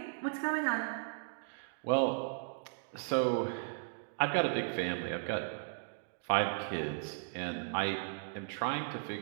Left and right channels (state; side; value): silent; left; digital silence